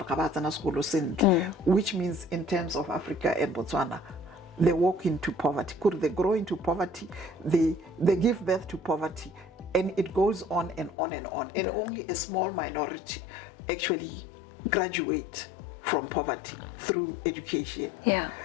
which means in terms of Africa and Botswana, they walk into poverty. They grow into poverty, they give birth to poverty, and it goes on and on and on. And only a small minority actually graduate from poverty through education. Yeah.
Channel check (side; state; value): right; drops out; at 11.0 s